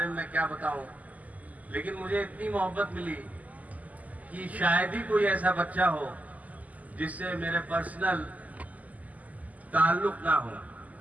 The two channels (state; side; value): late; left; 0.076 ms